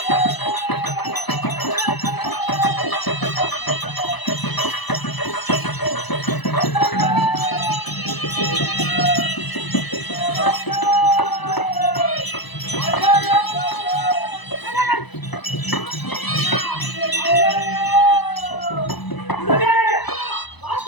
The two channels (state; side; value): late; right; 1.0 ms